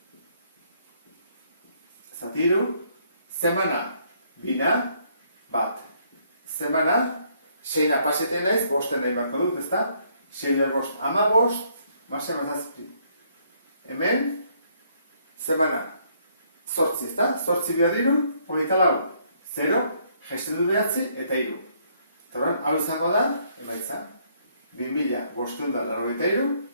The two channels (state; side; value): inverted; both; correlation -0.68